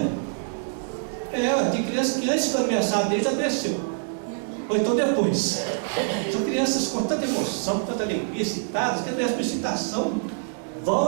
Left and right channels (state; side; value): silent; left; digital silence